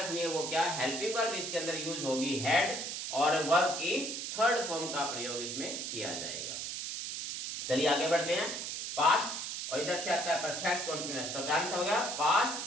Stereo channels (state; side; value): noise; right; hiss, 5 dB below the sound